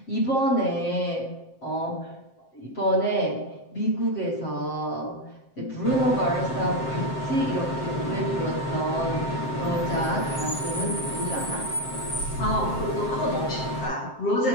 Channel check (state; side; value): late; right; 7.6 ms